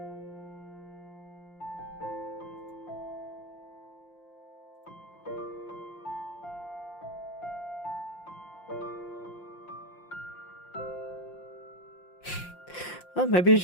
Well, maybe you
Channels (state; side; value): late; right; 5.7 ms